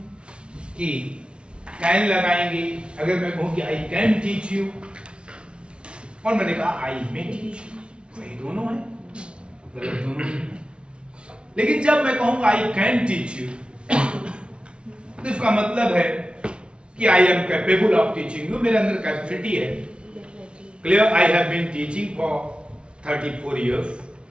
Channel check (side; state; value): left; late; 0.057 ms